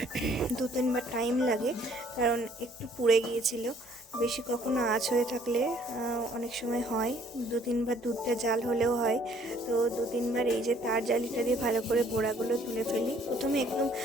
2-3 বার টাইম লাগে, কারণ একটু পুড়ে গিয়েছিল। বেশি কখনো আঁচ হয়ে থাকলে অনেক সময় হয় 2-3 বার দুধটা জাল হলেও হয়। তো 2-3 বার এই যে তার জালিটা দিয়ে ভালো করে গোড়াগুলো তুলে ফেলি। প্রথমে একদম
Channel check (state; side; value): normal; both; correlation 0.61